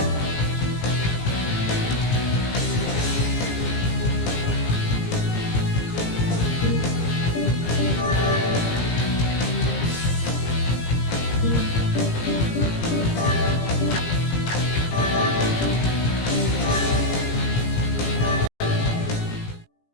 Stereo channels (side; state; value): right; late; 17 ms